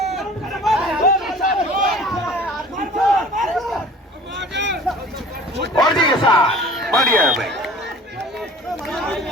और जी के साथ बढ़िया है भाई।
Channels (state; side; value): normal; both; correlation 0.46